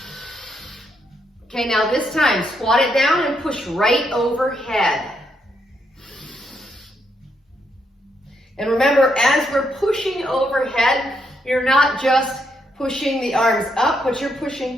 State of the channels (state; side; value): normal; both; correlation 0.78